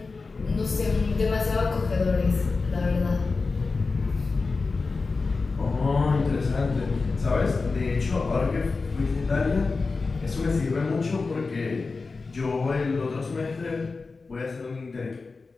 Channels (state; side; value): quieter; right; 4.1 dB